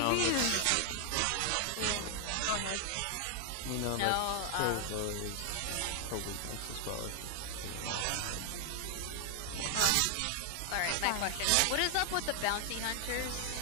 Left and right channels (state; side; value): different; both; correlation 0.00